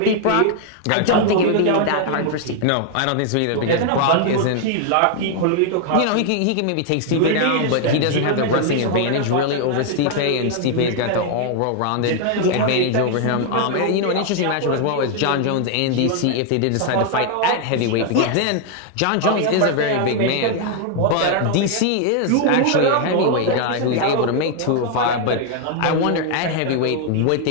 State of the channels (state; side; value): different; both; correlation 0.00